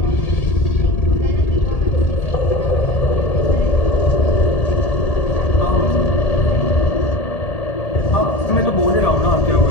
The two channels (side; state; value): right; late; 1.8 ms